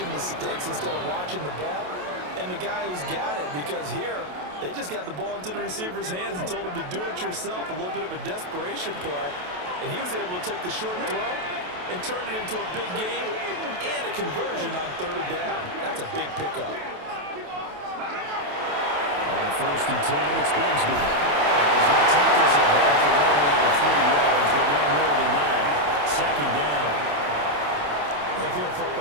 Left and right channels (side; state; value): left; late; 28 ms